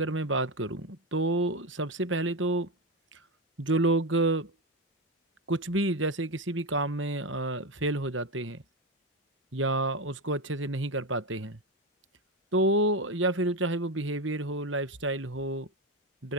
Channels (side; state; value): both; normal; correlation 0.13